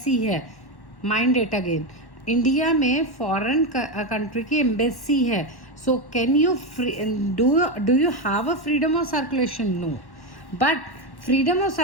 है, माइंड इट अगेन, इंडिया में foreign country की embassy है, so can you do you have a freedom of circulation? No, but freedom of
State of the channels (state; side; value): late; right; 1.1 ms